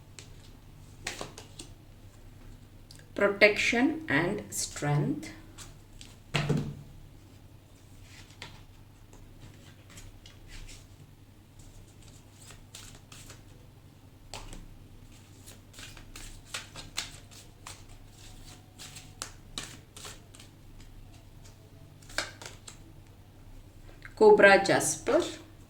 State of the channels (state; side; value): identical; both; correlation 1.00